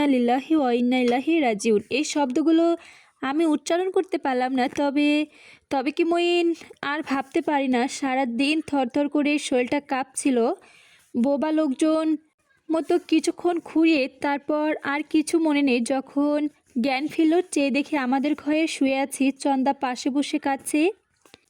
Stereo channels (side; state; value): both; identical; correlation 1.00